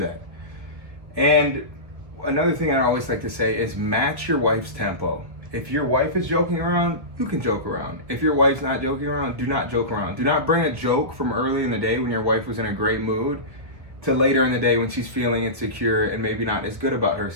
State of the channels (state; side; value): late; left; 1.4 ms